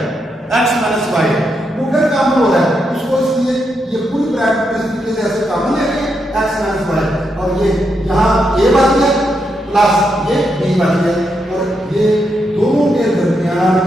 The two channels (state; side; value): normal; both; correlation 0.82